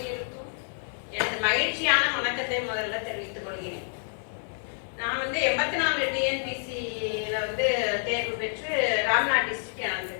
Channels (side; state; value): right; silent; 59 dB below the other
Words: எனது மகிழ்ச்சியான வணக்கத்தை முதல்ல தெரிவித்துக் கொள்கிறேன். நான் 84 டிஎன்பிசியில தேர்வு பெற்று ராம்நாத் டிஸ்ட்ரிக்ட் எனக்கு.